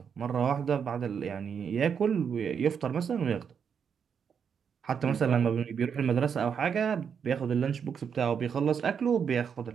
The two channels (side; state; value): left; quieter; 7.1 dB